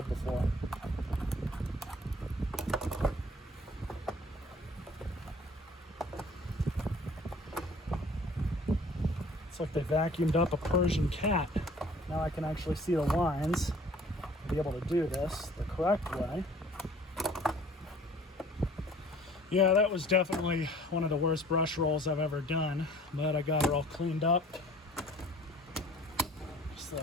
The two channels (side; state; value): both; normal; correlation 0.51